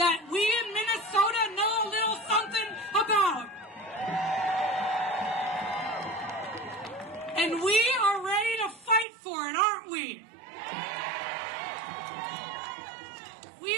we in Minnesota know a little something about. And we are ready to fight for it, aren't we? We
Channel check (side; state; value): left; drops out; at 9.1 s